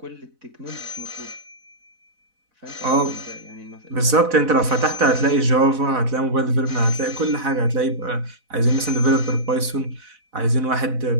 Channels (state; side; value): late; left; 4.0 ms